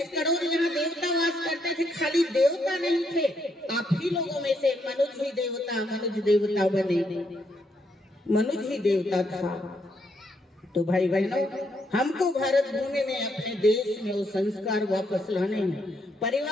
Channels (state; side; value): normal; both; correlation 0.76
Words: करोड़ यहाँ देवता वास करते थे, खाली देवता नहीं थे, आप ही लोगों में से मनुज ही देवता बने, मनुज ही देवता था। तो भाई बहनों, हमको भारत भूमि में अपने देश में वो संस्कार वापस लाने हैं,